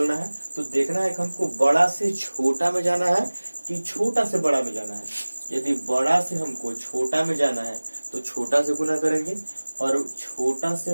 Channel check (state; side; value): inverted; both; correlation -1.00